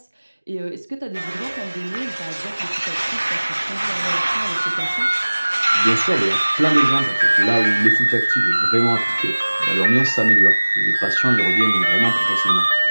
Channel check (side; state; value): both; inverted; correlation -1.00